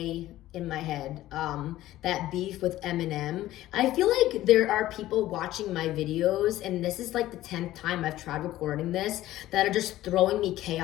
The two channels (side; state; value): right; quieter; 14.9 dB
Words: in my head, that beef with Eminem. I feel like there are people watching my videos, and this is like the 10th time I've tried recording this, that are just throwing me